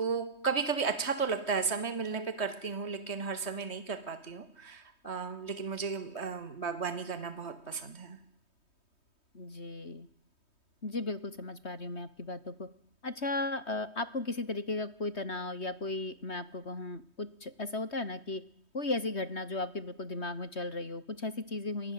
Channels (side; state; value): right; late; 3.2 ms